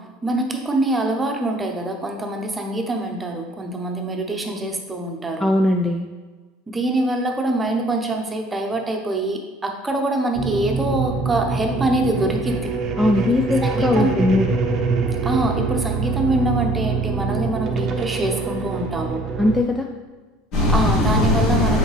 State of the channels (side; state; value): both; normal; correlation 0.58